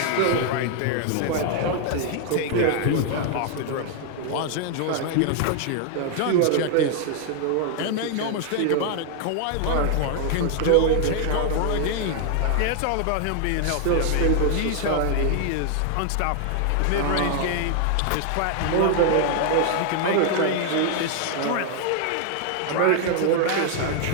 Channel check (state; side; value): different; both; correlation 0.00